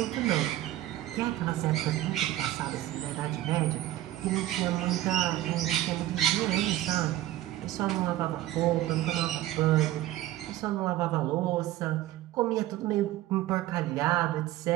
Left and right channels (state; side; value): quieter; left; 14.8 dB